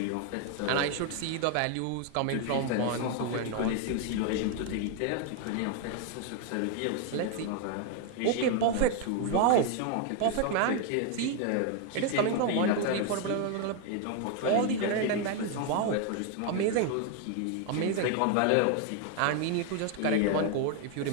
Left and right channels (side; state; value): both; different; correlation 0.01